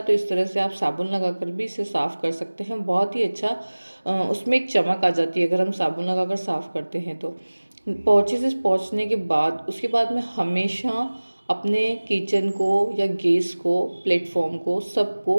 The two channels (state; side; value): inverted; both; correlation -1.00